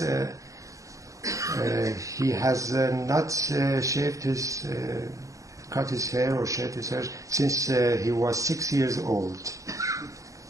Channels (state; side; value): late; left; 0.16 ms